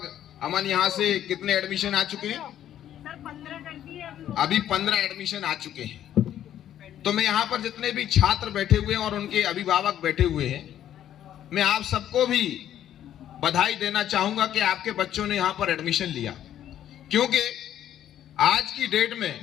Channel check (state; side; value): quieter; right; 11.1 dB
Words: अमन यहाँ से कितने एडमिशन आ चुके हैं? अभी 15 एडमिशन आ चुके हैं। तो मैं यहाँ पर जितने भी छात्र बैठे हुए हैं और उनके अभिभावक बैठे हुए हैं, मैं आप सबको भी बधाई देना चाहूंगा कि आपके बच्चों ने यहाँ पर एडमिशन लिया। क्योंकि आज की डेट